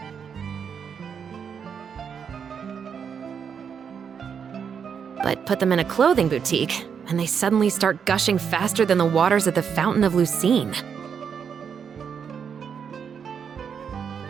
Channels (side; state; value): left; quieter; 7.1 dB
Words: But put them in a clothing boutique, and they suddenly start gushing faster than the waters at the Fountain of Lucine.